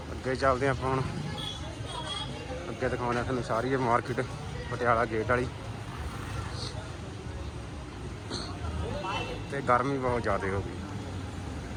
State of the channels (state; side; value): identical; both; correlation 1.00